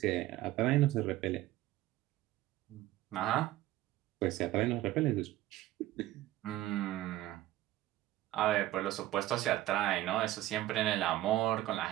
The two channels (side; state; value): left; quieter; 15.4 dB